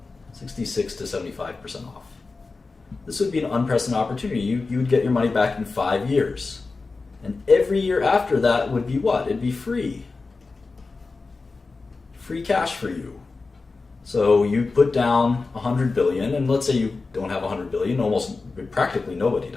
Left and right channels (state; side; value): quieter; right; 4.0 dB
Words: 66 to 75% off. This would be an unprecedented opportunity. You would get your money back in 5 years. And every year after that would be what? It'd be free. Free cash for you. So you put down $100 billion, and let's say you don't have $100 billion, practically nobody